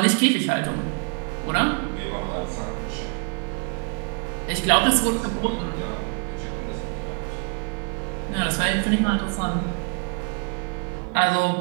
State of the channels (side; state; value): left; quieter; 36.9 dB